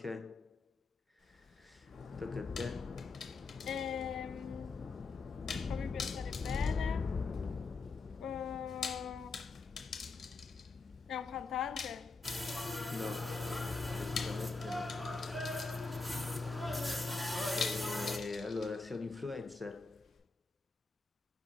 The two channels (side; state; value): right; quieter; 4.0 dB